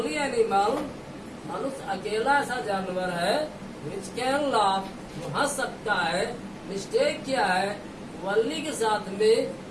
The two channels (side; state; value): both; identical; correlation 1.00